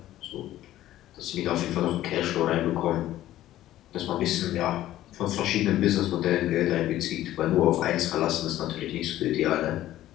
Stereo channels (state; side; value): quieter; right; 13.9 dB